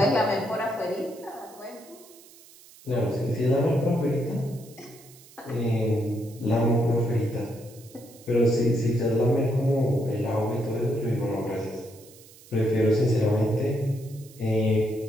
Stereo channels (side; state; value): right; noise; hiss, 23 dB below the sound